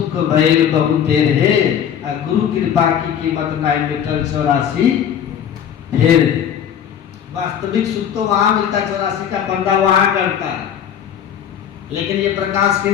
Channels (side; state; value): right; quieter; 8.9 dB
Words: भइल बहु तेरे, गुरु कृपा की कीमत नहीं मिटल 84 फिर। वास्तविक सुख तो वहां मिलता है, 84 का बंदा वहां करता है, लेकिन ये प्रकाश